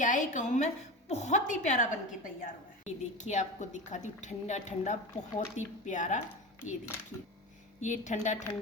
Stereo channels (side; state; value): both; normal; correlation 0.27